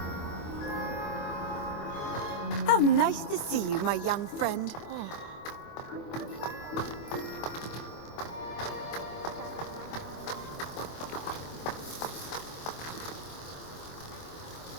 How nice to see you, my young friend.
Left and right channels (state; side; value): late; right; 25 ms